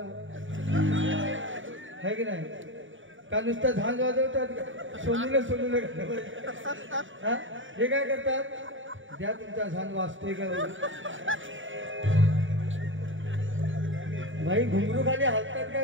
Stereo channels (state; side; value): late; left; 0.56 ms